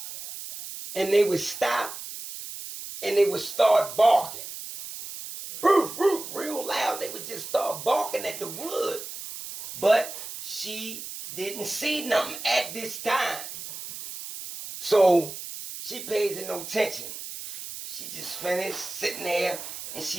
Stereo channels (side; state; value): right; noise; hiss, 10 dB below the sound